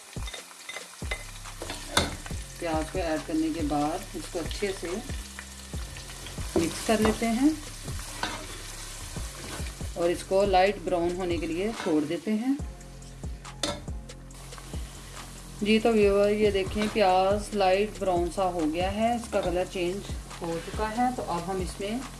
प्याज को ऐड करने के बाद इसको अच्छे से मिक्स कर लेते हैं और इसको लाइट ब्राउन होने के लिए छोड़ देते हैं। जी तो व्यूअर ये देखें प्याज लाइट ब्राउन सा हो गया है, इसका कलर चेंज हो चुका है। तो अब हम इसमें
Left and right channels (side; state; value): both; identical; correlation 1.00